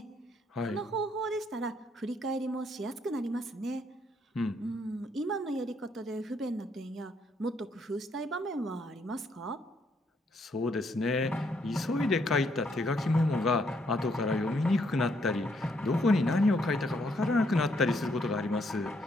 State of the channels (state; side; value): normal; both; correlation 0.72